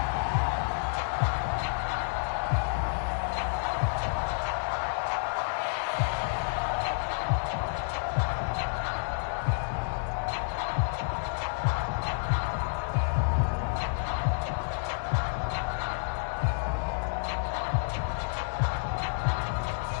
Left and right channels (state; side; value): silent; right; digital silence